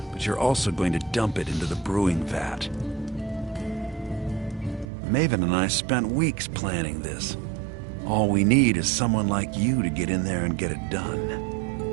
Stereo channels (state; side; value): drops out; left; at 4.9 s